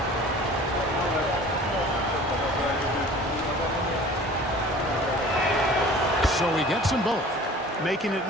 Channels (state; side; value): normal; both; correlation 0.45